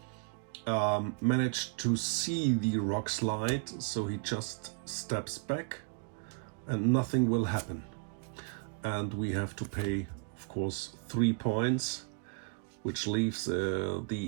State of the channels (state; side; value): quieter; left; 35.6 dB